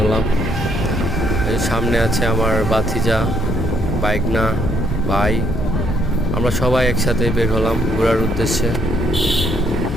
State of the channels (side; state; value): both; normal; correlation 0.70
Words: হলাম। এই সামনে আছে আমার বাতিজা, বাইকনা, ভাই। আমরা সবাই একসাথে বের হলাম ঘোরার উদ্দেশ্যে।